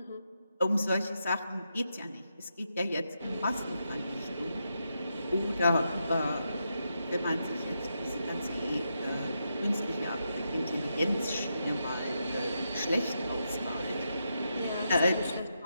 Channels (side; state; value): both; inverted; correlation -0.84